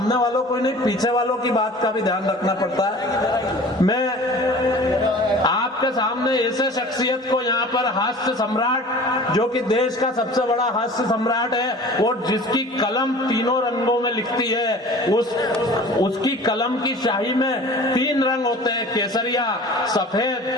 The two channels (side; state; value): both; normal; correlation 0.43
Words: वालों को नहीं, पीछे वालों की बात का भी ध्यान रखना पड़ता है। मैं आपके सामने ऐसे शख्सियत को यहाँ पर हास्य सम्राट, जो कि देश का सबसे बड़ा हास्य सम्राट है और जिसकी कलम तीनों रंगों में लिखती है, उसकी कलम की शाही में 3 रंग होते हैं, केसरिया,